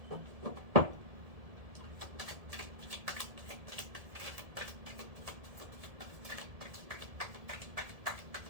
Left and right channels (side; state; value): left; late; 1.7 ms